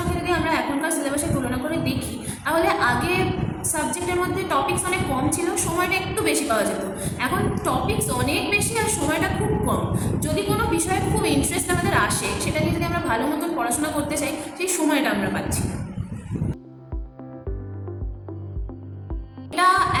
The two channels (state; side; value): identical; both; correlation 1.00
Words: যদি আমরা এখনকার সিলেবাসের তুলনা করে দেখি, তাহলে আগে সাবজেক্টের মধ্যে টপিকস অনেক কম ছিল, সময়টা একটু বেশি পাওয়া যেত। এখন টপিকস অনেক বেশি আর সময়টা খুব কম। যদি কোনো বিষয়ে খুব ইন্টারেস্ট আমাদের আসে, সেটা নিয়ে যদি আমরা ভালো মতন পড়াশোনা করতে চাই, সেই সময়টা আমরা পাচ্ছি না। এটা